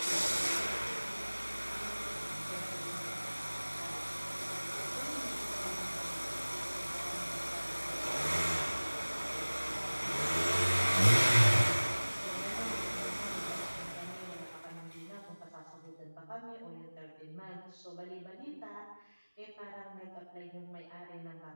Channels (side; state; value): both; inverted; correlation -1.00